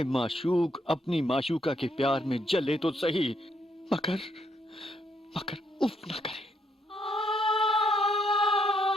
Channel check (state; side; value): normal; both; correlation 0.74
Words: माशूक अपनी माशूका के प्यार में जले तो सही, मगर मगर उफ न करे।